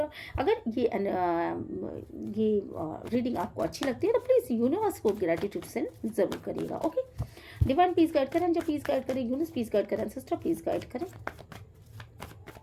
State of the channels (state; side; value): identical; both; correlation 1.00